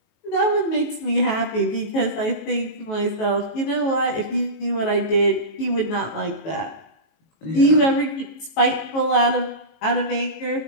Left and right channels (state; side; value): late; right; 19 ms